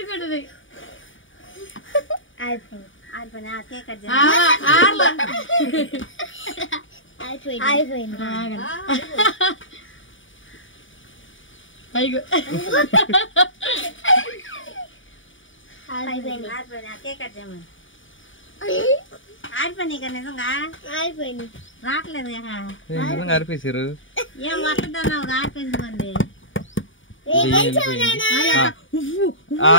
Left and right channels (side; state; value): right; late; 0.57 ms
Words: అయిపోయింది. కేక్ కట్ అయిపోయింది. కేక్ కట్ చేయమని. ఆడిపోయినాయి కదా, నిజంగా అయిపోయింది. రావట్లేదు అరిపేసారు. ఏం వస్తుందన్నావు, ఆడిపోయింది.